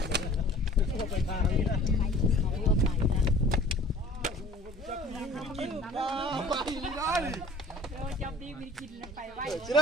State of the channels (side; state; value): both; normal; correlation 0.49